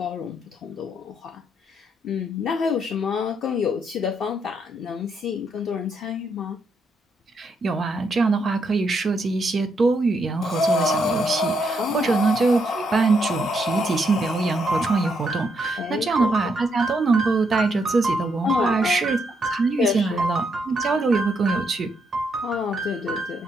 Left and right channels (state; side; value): normal; both; correlation 0.77